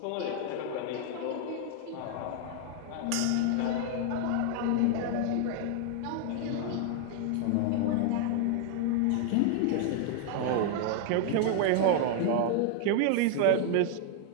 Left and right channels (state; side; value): different; both; correlation 0.00